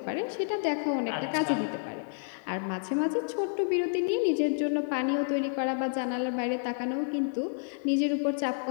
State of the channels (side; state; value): right; silent; digital silence